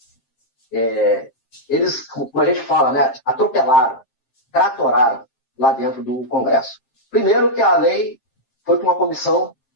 Eles, como a gente fala, né, atropelaram, tratoraram lá dentro do Congresso. Primeiro que a lei foi para uma comissão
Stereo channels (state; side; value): late; right; 7.6 ms